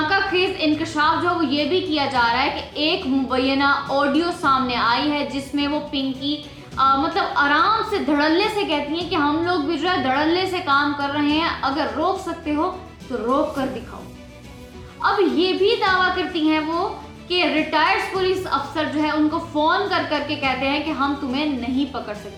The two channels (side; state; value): both; identical; correlation 1.00